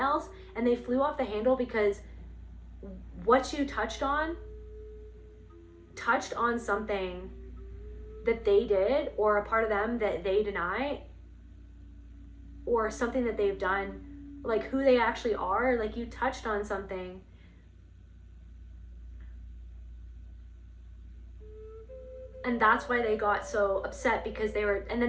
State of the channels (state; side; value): identical; both; correlation 1.00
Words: and they flew off the handle because what you touched on something that they did, or a part of them that they deny, or something that they've done, like who they actually are. Like you touched on something. And that's why they got so upset, because they were, and then